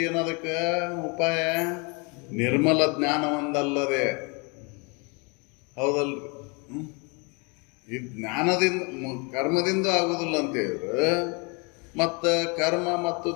ಏನು ಅದಕ್ಕೆ ಉಪಾಯ? ನಿರ್ಮಲ ಜ್ಞಾನ ಒಂದಲ್ಲದೆ. ಹೌದಲ್ರಿ? ಈ ಜ್ಞಾನದಿಂದ ಕರ್ಮದಿಂದ ಆಗುದಿಲ್ಲ ಅಂತ ಹೇಳಿದ್ರು, ಮತ್ತು ಕರ್ಮ ಮತ್ತು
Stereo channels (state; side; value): quieter; right; 31.2 dB